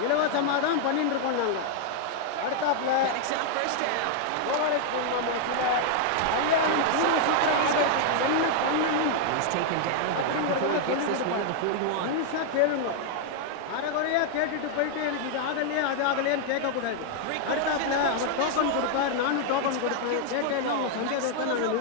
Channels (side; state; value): both; different; correlation 0.00